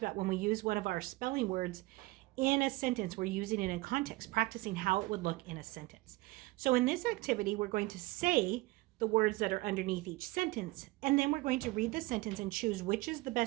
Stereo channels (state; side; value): quieter; left; 20.6 dB